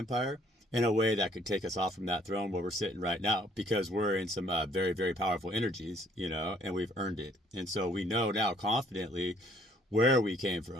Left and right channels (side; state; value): both; normal; correlation 0.62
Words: in a way that could take us off from that throne where we're sitting right now, because we're in some very, very powerful energies, and we've earned it. And so we know now confidently where we came